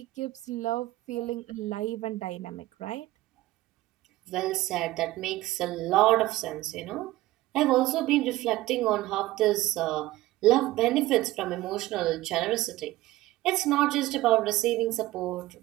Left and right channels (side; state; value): left; quieter; 17.2 dB